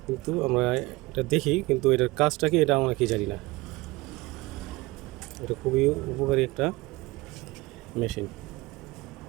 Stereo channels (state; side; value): quieter; left; 22.0 dB